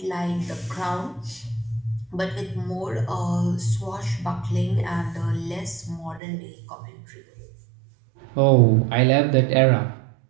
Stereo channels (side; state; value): left; drops out; at 6.2 s